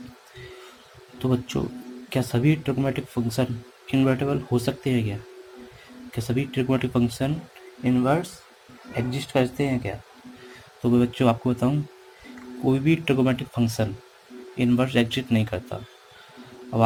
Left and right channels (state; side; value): identical; both; correlation 1.00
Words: तो बच्चों, क्या सभी ट्रिग्नोमेट्रिक फंक्शन इन्वर्टेबल हो सकते हैं क्या? क्या सभी ट्रिग्नोमेट्रिक फंक्शन इन्वर्स एग्जिस्ट करते हैं क्या? तो मैं बच्चों आपको बताऊं, कोई भी ट्रिग्नोमेट्रिक फंक्शन इन्वर्स एग्जिस्ट नहीं करता। अब